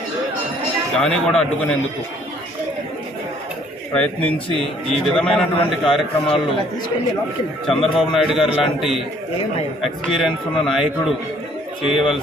దాన్ని కూడా అడ్డుకునేందుకు ప్రయత్నించి ఈ విధమైనటువంటి కార్యక్రమాలు చంద్రబాబు నాయుడు గారు లాంటి ఎక్స్పీరియన్స్ ఉన్న నాయకుడు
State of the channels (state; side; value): normal; both; correlation 0.60